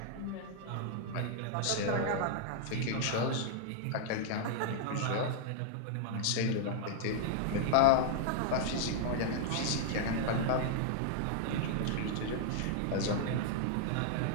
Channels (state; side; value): different; both; correlation 0.00